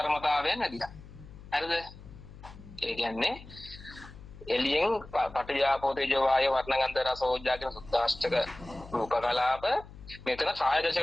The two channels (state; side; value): noise; left; hum, 17 dB below the sound